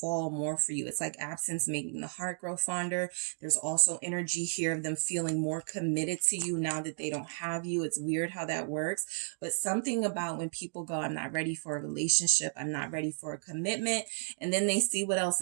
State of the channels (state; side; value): silent; left; digital silence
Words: more for you. It's like absence making the heart grow fonder. There's also energy here of them feeling more committed to you now that they don't have you. It's weird how that works, but something about when people go, I'm not ready for a relationship, I'm not ready for a commitment, and then they see what else